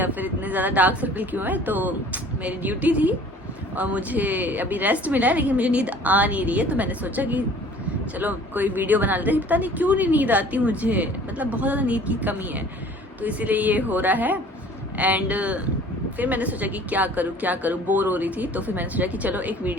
फिर इतने ज़्यादा डार्क सर्कल क्यों है। तो मेरी ड्यूटी थी और मुझे अभी रेस्ट मिला है, लेकिन मुझे नींद आ नहीं रही है। तो मैंने सोचा कि चलो कोई वीडियो बना लेते हैं। पता नहीं क्यों नहीं नींद आती मुझे, मतलब बहुत ज़्यादा नींद की कमी है, तो इसीलिए ये हो रहा है। एंड फिर मैंने सोचा कि क्या करूँ, बोर हो रही थी। तो फिर मैंने सोचा कि चलो एक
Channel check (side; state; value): both; normal; correlation 0.50